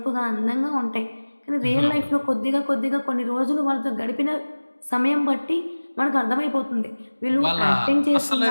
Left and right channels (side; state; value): both; inverted; correlation -1.00